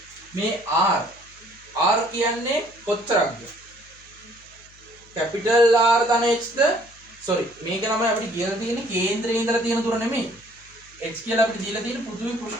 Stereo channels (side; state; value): left; noise; hum, 26 dB below the sound